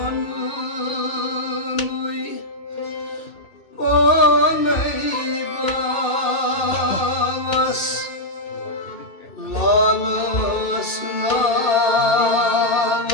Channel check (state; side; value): late; right; 2.7 ms